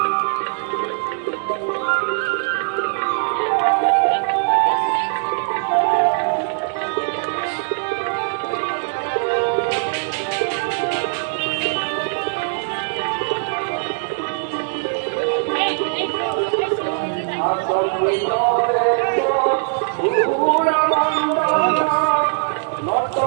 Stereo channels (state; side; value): silent; left; 65 dB below the other